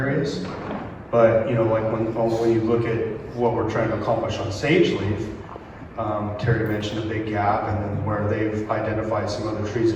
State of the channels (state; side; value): identical; both; correlation 1.00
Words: But, you know, like when you look at what we're trying to accomplish on sage leaf, Terry mentioned a big gap, and then where they've identified some other trees